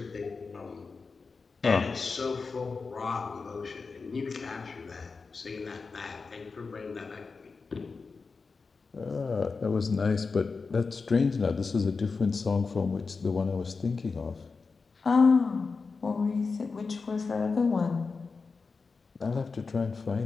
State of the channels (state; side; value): quieter; right; 4.5 dB